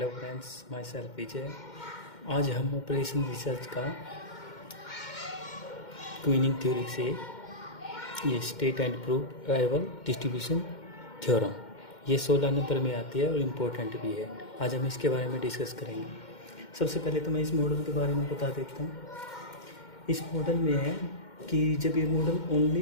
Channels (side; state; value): right; late; 2.1 ms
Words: friends, my self विजय। आज हम operation research का क्वीनिंग थ्योरी से ये state and proof arrival distribution theorem ये 16 नंबर में आती है और इम्पोर्टेंट भी है। आज हम इसके बारे में डिस्कस करेंगे। सबसे पहले तो मैं इस मॉडल के बारे में बता देता हूँ। इस मॉडल में है कि जब ये मॉडल